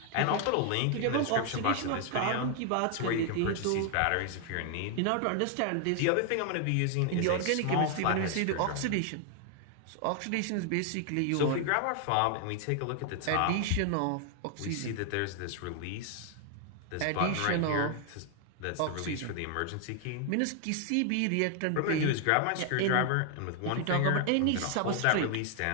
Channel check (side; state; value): both; different; correlation 0.00